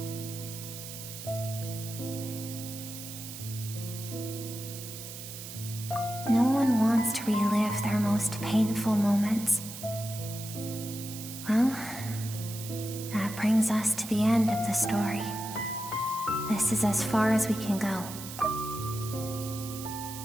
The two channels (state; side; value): noise; right; hiss, 11 dB below the sound